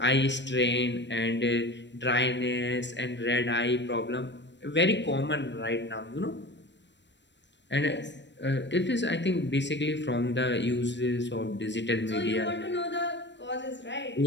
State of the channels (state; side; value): late; right; 0.52 ms